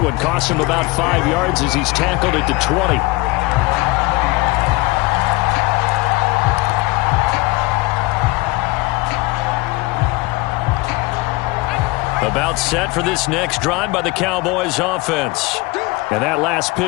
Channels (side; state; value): right; quieter; 22.6 dB